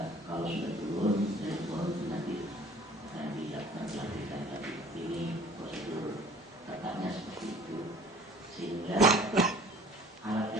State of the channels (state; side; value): normal; both; correlation 0.50